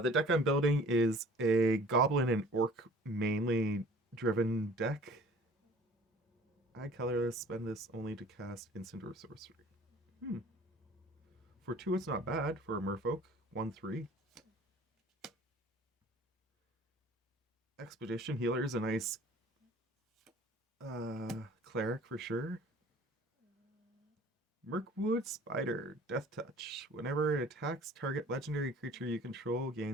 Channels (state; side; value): normal; both; correlation 0.49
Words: deck I'm building is a Goblin and Orc mainly driven deck. I colorless, spend this only to cast instant or sorcery. For 2, it's not bad for a Merfolk. 1/3. Expedition Healer is a nice cleric for sure. Mirkwood Spider, Death Touch. Whenever it attacks, target legendary creature you control